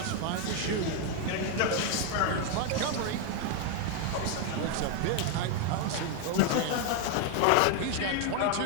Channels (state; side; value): different; both; correlation 0.01